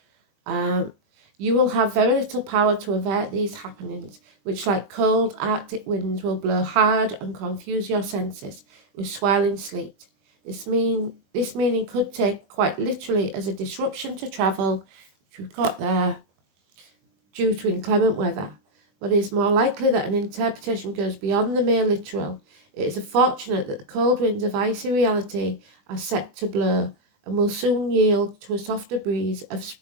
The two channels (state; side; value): late; left; 21 ms